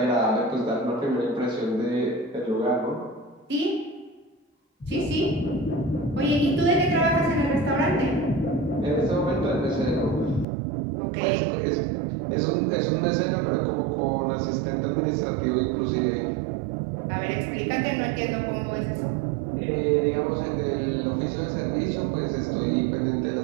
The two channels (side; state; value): left; drops out; at 10.5 s